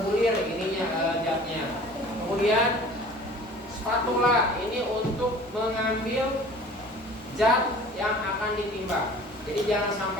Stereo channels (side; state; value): both; normal; correlation 0.46